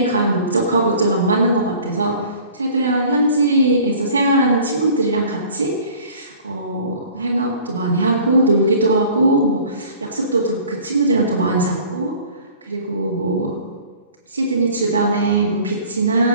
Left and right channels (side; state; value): both; inverted; correlation -0.48